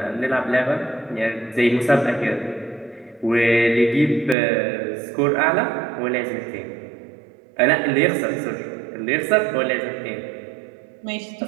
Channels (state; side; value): drops out; left; at 4.4 s